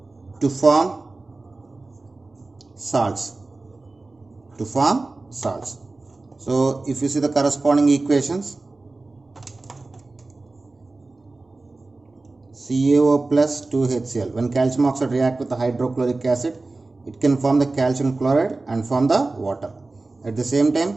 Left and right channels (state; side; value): quieter; left; 3.3 dB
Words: to form salts. So if you see the corresponding equations, CaO plus 2HCl. When calcium oxide react with the hydrochloric acid, it can form the calcium chloride and form the water. At the same